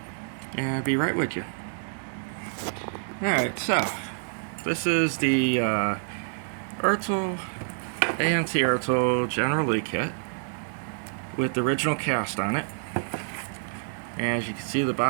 and be right with you. Alright, so, this is the ertl, AMT ertl General Lee kit with the original cast on it. And as you can see, the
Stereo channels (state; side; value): silent; left; 58 dB below the other